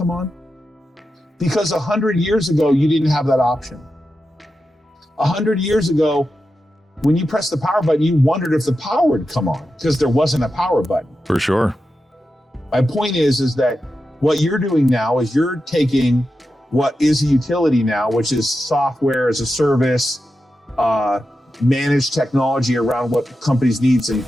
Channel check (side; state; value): both; normal; correlation 0.90